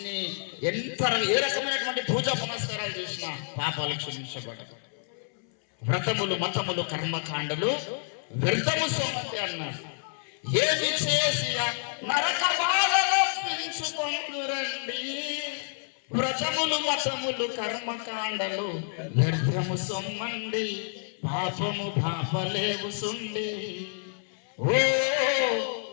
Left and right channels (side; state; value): right; silent; 58 dB below the other